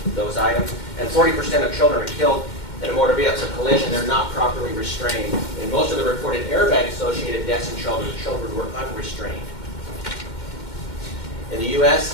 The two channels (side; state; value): right; late; 2.1 ms